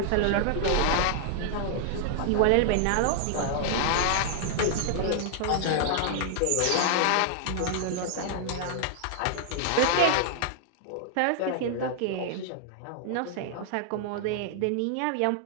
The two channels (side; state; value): both; different; correlation 0.00